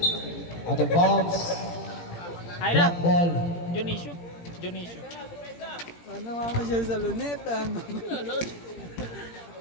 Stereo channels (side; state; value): right; late; 17 ms